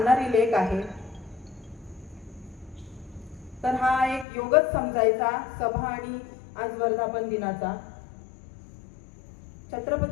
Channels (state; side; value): drops out; right; at 4.2 s